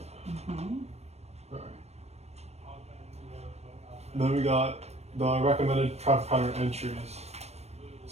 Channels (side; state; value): left; late; 0.31 ms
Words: Mm-hmm. Alright. Then we got the recommended traffic pattern entries.